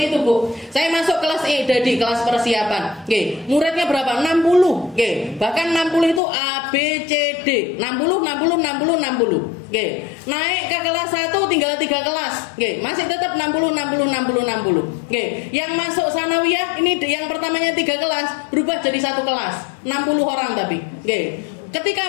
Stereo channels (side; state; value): right; drops out; at 6.2 s